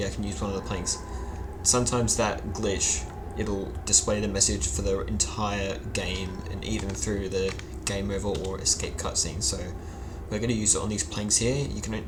I can use one of the planks. Sometimes that glitch, it'll display the message for the entire game and even through the game over or escape cutscene. So we're going to use it on these planks here.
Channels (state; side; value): identical; both; correlation 1.00